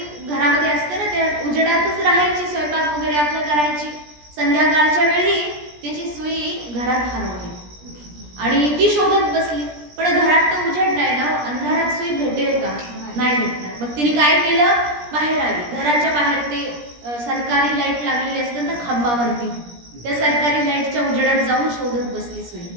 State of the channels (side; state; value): left; late; 17 ms